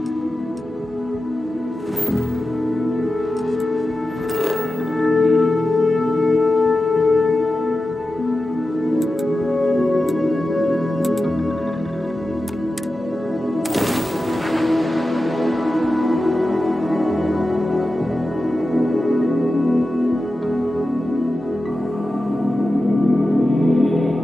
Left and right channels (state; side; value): normal; both; correlation 0.93